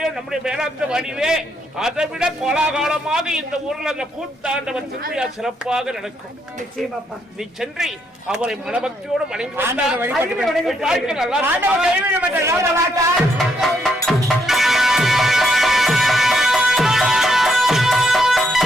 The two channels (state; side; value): normal; both; correlation 0.74